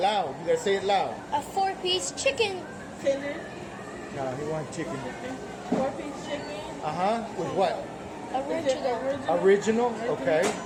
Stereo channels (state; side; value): identical; both; correlation 1.00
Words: You gotta say it loud. a 4-piece chicken. Tender. No, he wants chicken. 4-piece chicken. With what? Is it Original. Original? Okay.